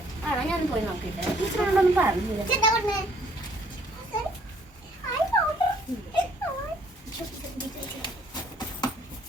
ആണോ? ഞാൻ പോയി നോക്കിയിട്ട് ടീച്ചറോടൊന്നും പറഞ്ഞില്ല. എന്താ പറഞ്ഞേ?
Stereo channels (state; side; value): normal; both; correlation 0.63